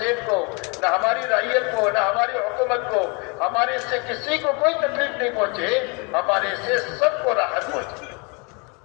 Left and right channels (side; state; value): right; quieter; 32.0 dB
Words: کو، نہ ہماری رعیت کو، نہ ہماری حکومت کو. ہمارے سے کسی کو کوئی تکلیف نہیں پہنچے، ہمارے سے سب کو راحت پہنچے.